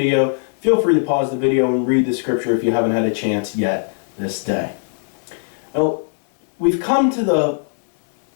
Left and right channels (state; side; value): silent; right; digital silence